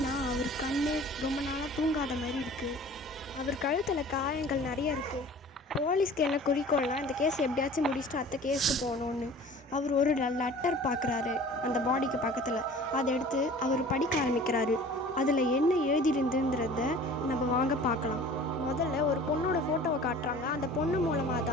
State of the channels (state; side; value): normal; both; correlation 0.44